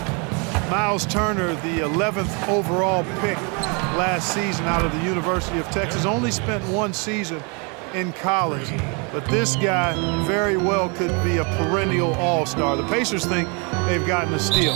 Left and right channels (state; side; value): quieter; left; 33.4 dB